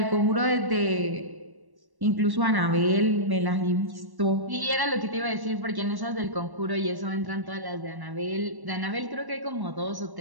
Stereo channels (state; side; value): late; left; 1.1 ms